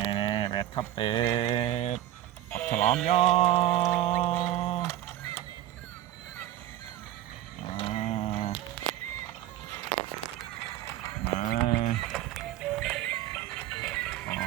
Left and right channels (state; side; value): quieter; left; 13.2 dB